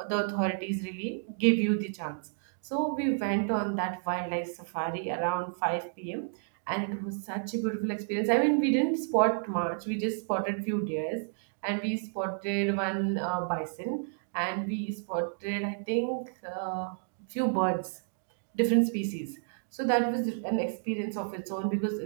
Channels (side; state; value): left; silent; digital silence